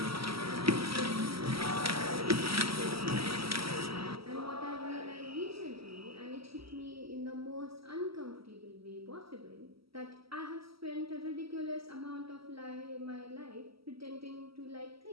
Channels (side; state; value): left; late; 0.75 ms